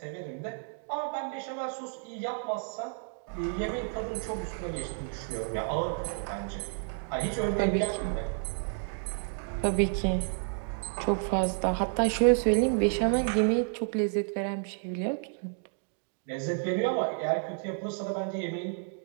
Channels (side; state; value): left; silent; 57 dB below the other